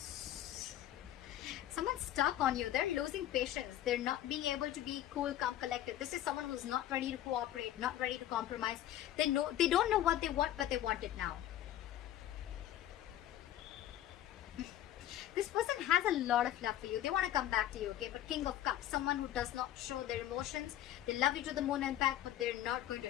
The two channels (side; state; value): right; quieter; 12.7 dB